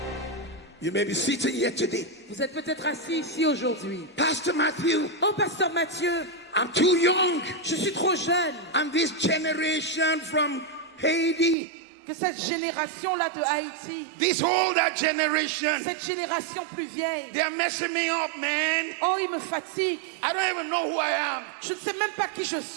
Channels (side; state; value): left; drops out; at 11.6 s